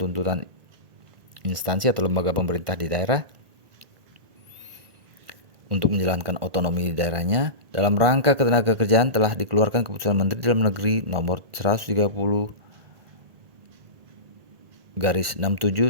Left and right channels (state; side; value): late; left; 1.8 ms